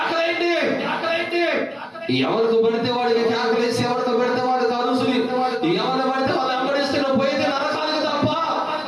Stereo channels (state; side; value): identical; both; correlation 1.00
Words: ఎవరికి పడితే వాడికి కేకలేసి, ఎవరికి పెడితే వాడికి అరుసులు, ఎవరు పడితే వాళ్ళు వెంబడిస్తే నువ్వు పోయితే నరకానికి తప్ప,